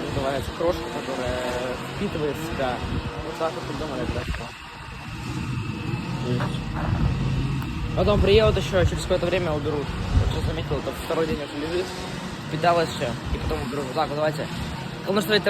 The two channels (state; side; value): identical; both; correlation 1.00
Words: называется, крошка, которая впитывает в себя. Вот так вот придумали это. Потом приедут еще, через какое-то время уберут. Вот сейчас заметил, это второй день уже лежит. Питалась еще, и потом уберут. Так, вот давайте. Кому нужна